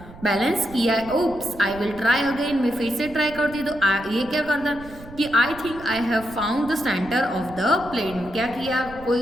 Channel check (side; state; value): right; noise; rumble, 17 dB below the sound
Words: बैलेंस किया है। Oops I will try again, मैं फिर से ट्राई करती तो ये क्या करता कि आई think I have found the centre of the plate, क्या किया, कोई